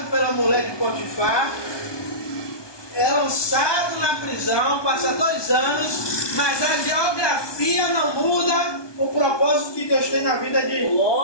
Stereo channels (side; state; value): right; late; 1.2 ms